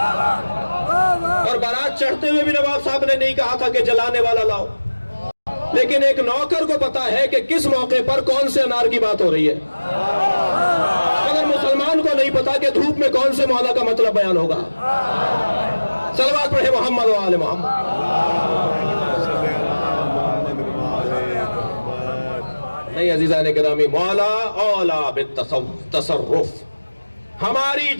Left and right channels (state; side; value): inverted; both; correlation -1.00